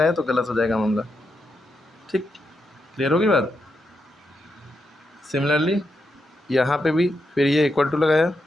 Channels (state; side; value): normal; both; correlation 0.84